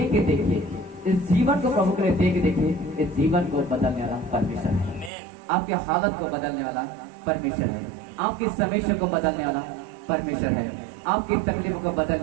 के देखिए। इस जीवन को प्रभु के लिए दे के देखिए। इस जीवन को बदलने वाला परमेश्वर है, आपके हालत को बदलने वाला परमेश्वर है, आपकी समस्या को बदलने वाला परमेश्वर है, आपकी तकलीफों को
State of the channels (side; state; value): left; drops out; at 5.1 s